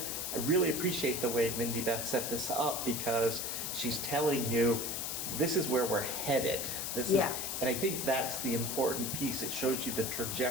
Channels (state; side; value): noise; left; hiss, 3 dB below the sound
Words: really appreciate the way Mindy Beth set this up, because she's telling you, this is where we're headed. Yeah. And I think that's the important piece. It shows you the